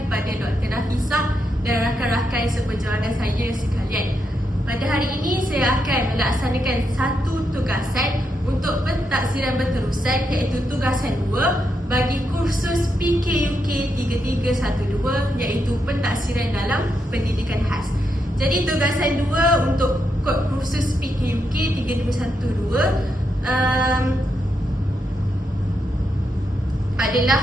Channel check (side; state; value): both; normal; correlation 0.82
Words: kepada Dr. Nafisah dan rakan-rakan seperjuangan saya sekalian. Pada hari ini saya akan melaksanakan satu tugasan untuk pentaksiran berterusan, iaitu tugasan 2 bagi kursus PKUK 3312, iaitu pentaksiran dalam pendidikan khas. Jadi tugasan 2 untuk kod kursus PKUK 3312